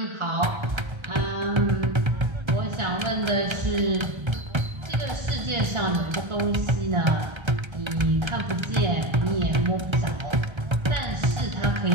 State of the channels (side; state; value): left; late; 1.3 ms